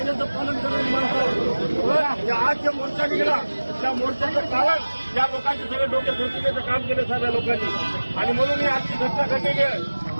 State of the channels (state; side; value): inverted; both; correlation -1.00